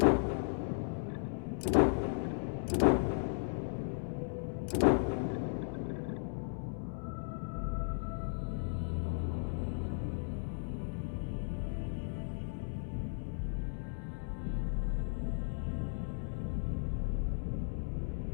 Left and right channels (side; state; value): right; silent; digital silence